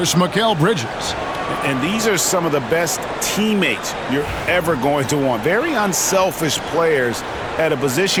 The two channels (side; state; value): both; identical; correlation 1.00